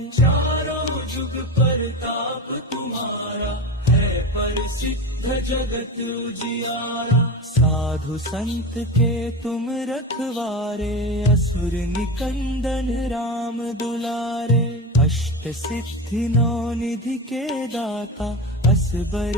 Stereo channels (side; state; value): both; normal; correlation 0.23